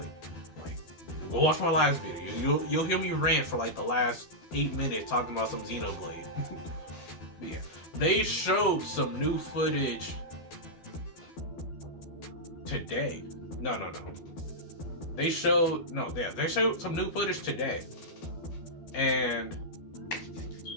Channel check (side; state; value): right; late; 12 ms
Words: Like, go watch my last video. You'll hear me rant for like the last 8 minutes talking about some Xenoblade. But yeah, they showed some new footage today. No. They showed some new footage today, and